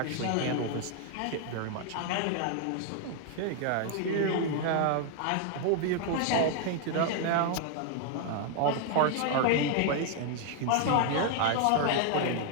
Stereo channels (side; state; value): both; different; correlation 0.00